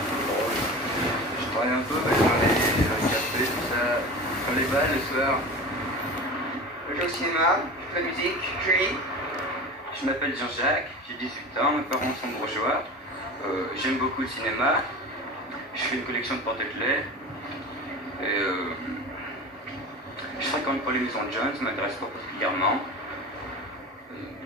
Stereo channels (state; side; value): normal; both; correlation 0.32